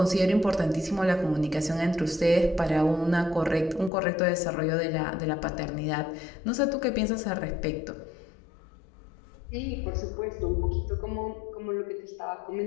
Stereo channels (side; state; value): right; drops out; at 3.9 s